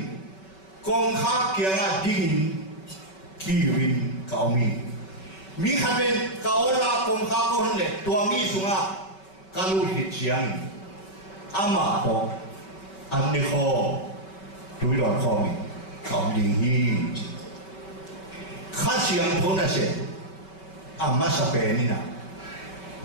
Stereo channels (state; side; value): late; right; 5.3 ms